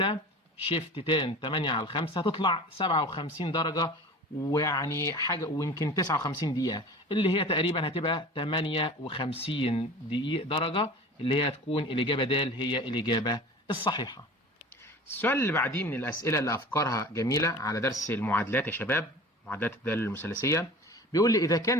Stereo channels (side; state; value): both; normal; correlation 0.39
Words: شيفت تان 8 على 5 هتطلع 57 درجه، ويعني حاجه ويمكن 59 دقيقه، اللي هي تقريبا هتبقى 58 دقيقه درجه، اللي هي هتكون الاجابه د هي الاجابه الصحيحه. السؤال اللي بعديه من الاسئله اللي افكارها جميله على درس المعادلات يا شباب، معادلات الداله المثلثيه. بيقول لي اذا كان